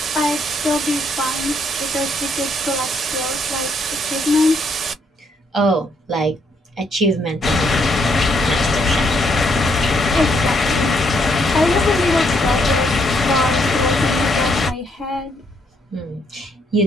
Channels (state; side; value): normal; both; correlation 0.72